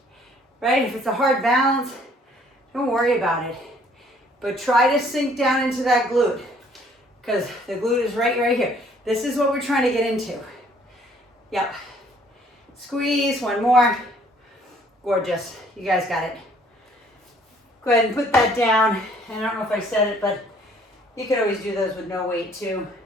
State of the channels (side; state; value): both; normal; correlation 0.60